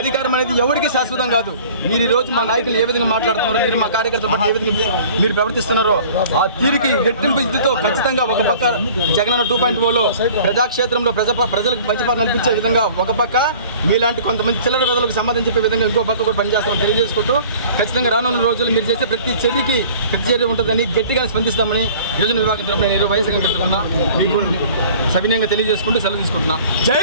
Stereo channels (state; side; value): inverted; both; correlation -0.48